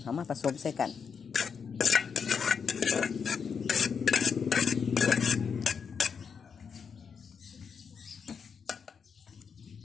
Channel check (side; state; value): right; quieter; 6.3 dB